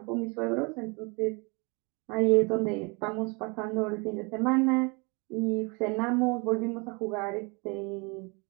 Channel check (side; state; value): left; quieter; 30.2 dB